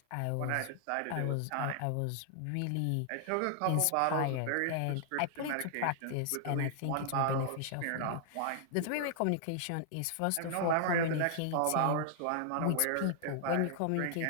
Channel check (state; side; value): different; both; correlation -0.01